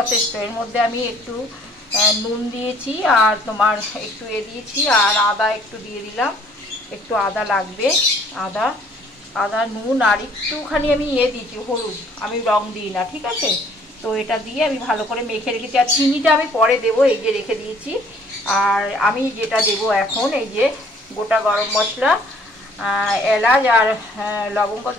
এর মধ্যে আমি একটু নুন দিয়েছি আর তোমার একটু দিয়েছি আর আদা একটু দিয়ে দিলাম, একটু আদা লাগবে। আদা আদা নুন আর একটুখানি আমি দিয়েছি হলুদ, আমি রং দিই না, ঠিক আছে। তো এটা দিয়ে আমি ভালো করে মেখে রেখেছি। আর চিনিটা আমি পরে দেবো, এই যে রেখে দিয়েছি। আর আমি যেটা দেবো এখন, এই যে গোটা গরম মশলা, এলাচ আর লবঙ্গ,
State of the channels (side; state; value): both; normal; correlation 0.59